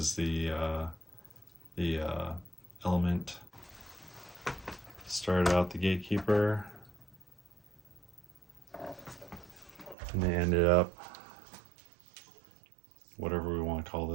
the Element. Started out the Gatekeeper, and they ended up whatever we want to call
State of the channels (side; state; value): left; drops out; at 10.0 s